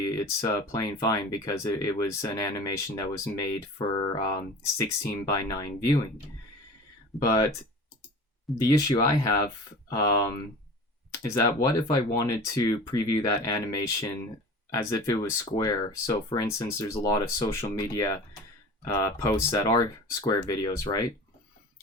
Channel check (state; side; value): normal; both; correlation 0.38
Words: it's playing fine because it was an animation that was made for 16:9 viewing. But the issue I have is that what if I wanted to preview that animation as if it was square? So for instance, there's a lot of social media posts that are square videos, right?